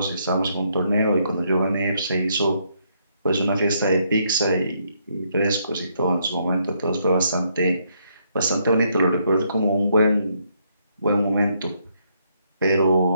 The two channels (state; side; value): inverted; both; correlation -0.74